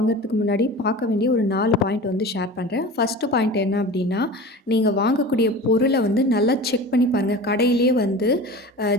முன்னாடி பார்க்க வேண்டிய ஒரு 4 பாயிண்ட் வந்து ஷேர் பண்ணுறேன். ஃபஸ்ட்டு பாயிண்ட் என்ன அப்படின்னா, நீங்கள் வாங்கக்கூடிய பொருளை வந்து நல்லா செக் பண்ணி பாருங்கள். கடையிலே வந்து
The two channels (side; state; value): both; normal; correlation 0.35